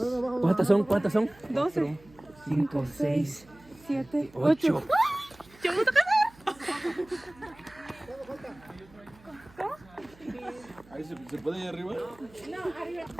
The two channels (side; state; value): right; noise; hum, 25 dB below the sound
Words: ¿Cuántas son? 12, 5, 6, 7, 8. Ahí se puede ir arriba.